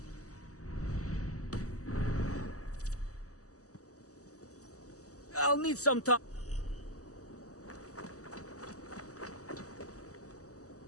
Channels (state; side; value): late; right; 0.66 ms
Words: I'll need some time.